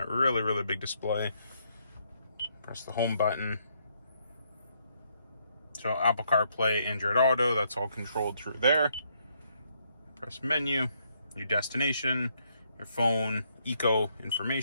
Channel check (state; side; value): inverted; both; correlation -0.74